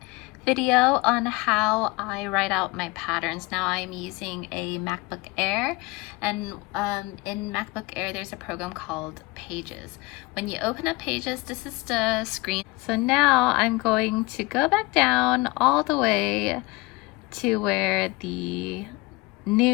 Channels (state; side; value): quieter; right; 23.6 dB